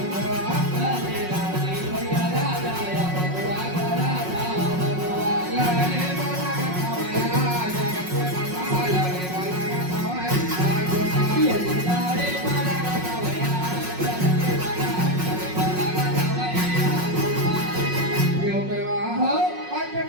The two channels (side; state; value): left; late; 5.5 ms